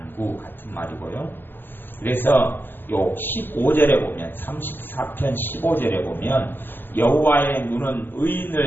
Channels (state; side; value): late; right; 0.095 ms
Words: 같은 말이고요. 그래서 요 15절에 보면, 34편 15절에 보면 여호와의 눈은